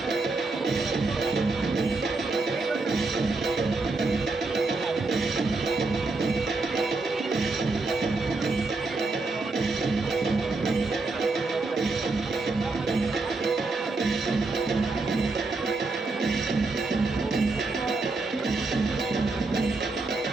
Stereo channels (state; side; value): quieter; left; 3.6 dB